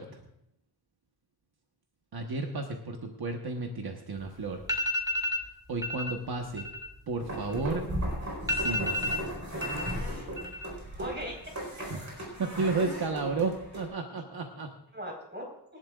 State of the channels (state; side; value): normal; both; correlation -0.06